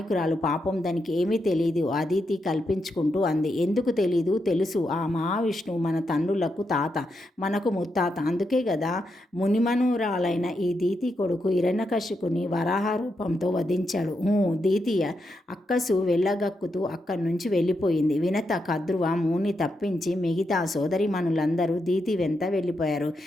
పాపం దానికి ఏమీ తెలీదు అదితి కల్పించుకుంటూ అంది. ఎందుకు తెలీదు? తెలుసు. ఆ మహావిష్ణువు మన తండ్రులకు తాత, మనకు ముత్తాత. అందుకే కదా మునిమనురాలైన ఈ దీతి కొడుకు హిరణ్యకశిపుని వరాహ రూపంతో వధించాడు. దీతి అక్కసు వెళ్ళగక్కుతూ అక్కడి నుంచి వెళ్ళిపోయింది. వినత, కద్రువ, ముని తప్పించి మిగతా సోదరిమణులందరూ దీతి వెంట వెళ్ళిపోయారు.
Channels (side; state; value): both; normal; correlation 0.83